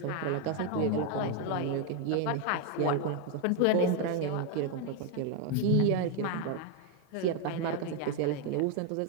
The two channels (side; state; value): both; different; correlation 0.01